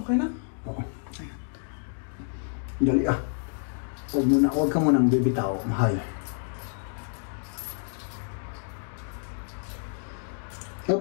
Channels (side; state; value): right; silent; digital silence